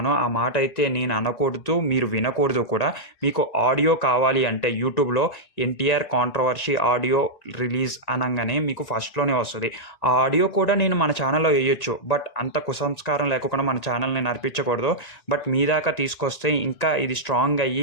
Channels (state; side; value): late; right; 1.9 ms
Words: ఆ మాట అయితే నేను అనకూడదు, మీరు వినకూడదు కూడా. మీకు ఆడియో కావాలి అంటే యూట్యూబ్‌లో ఎన్టీఆర్ కాంట్రోవర్సీ ఆడియో రిలీజ్ అనంగానే మీకు ఫస్ట్‌లోనే వస్తది. ఆ ఆడియో కూడా నేను మన ఛానల్‌లో ఎయొచ్చు. బట్ అంత కుసంస్కారం లేకోకుండా మన ఛానల్‌ని నడిపించకూడదు. బట్ మీ దాకా తీసుకొస్తే ఇంకా ఇది స్ట్రాంగ్